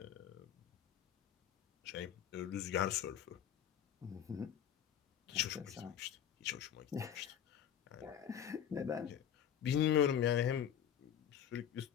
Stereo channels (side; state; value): right; quieter; 9.4 dB